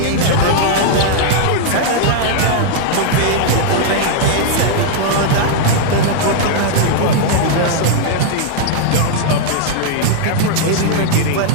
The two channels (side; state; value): both; different; correlation -0.01